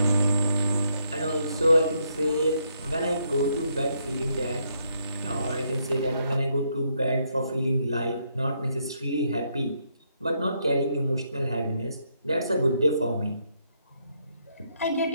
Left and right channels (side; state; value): both; inverted; correlation -0.75